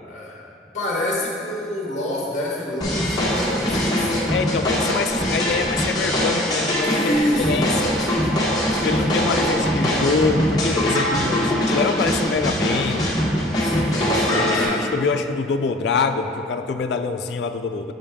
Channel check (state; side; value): normal; both; correlation 0.47